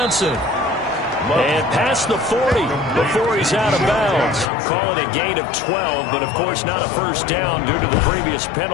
And past the 40 before he's out of bounds. Call it a gain of 12, but of course not a first down due to the previous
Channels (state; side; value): drops out; right; at 4.5 s